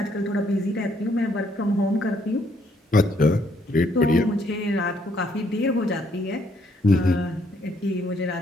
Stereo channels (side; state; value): both; normal; correlation 0.70